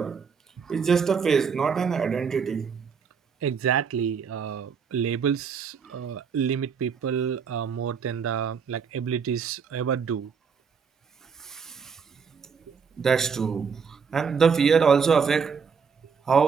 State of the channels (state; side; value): quieter; left; 6.1 dB